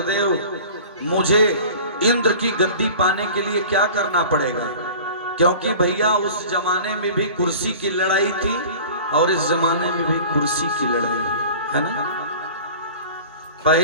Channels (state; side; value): inverted; both; correlation -0.41